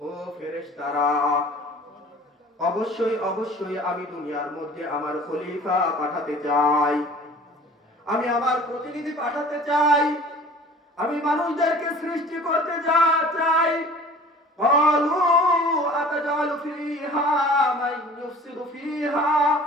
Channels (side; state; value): both; normal; correlation 0.46